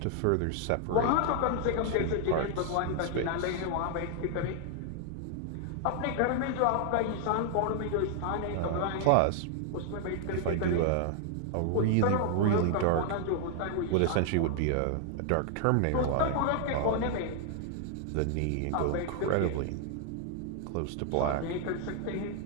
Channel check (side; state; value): both; different; correlation 0.00